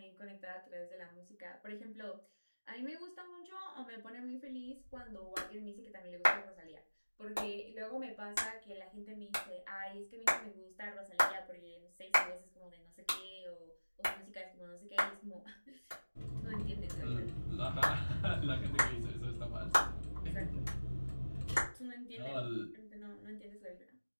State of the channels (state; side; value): inverted; both; correlation -1.00